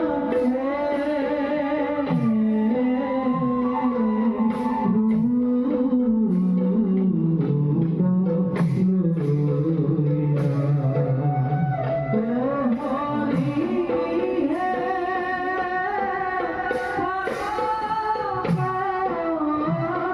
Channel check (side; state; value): left; noise; hum, 27 dB below the sound